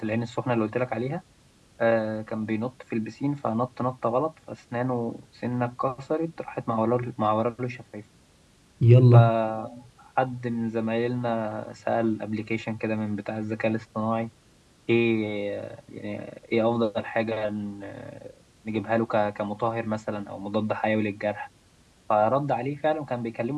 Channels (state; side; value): identical; both; correlation 1.00